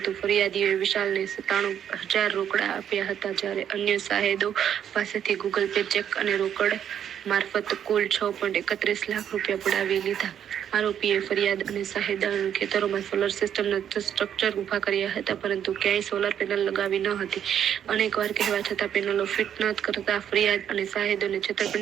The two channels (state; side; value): quieter; left; 9.3 dB